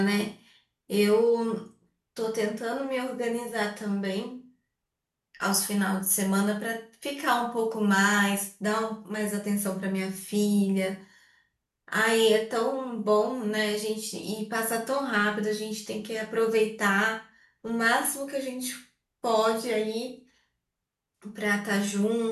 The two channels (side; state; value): both; identical; correlation 1.00